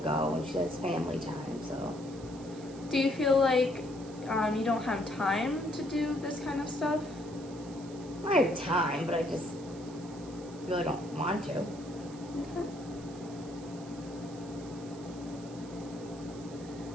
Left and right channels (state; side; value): noise; right; hiss, 20 dB below the sound